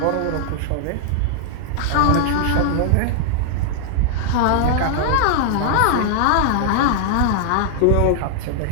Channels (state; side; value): different; both; correlation -0.01